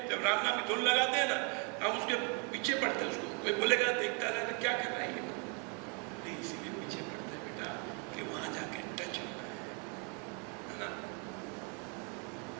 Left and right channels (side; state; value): left; quieter; 35.7 dB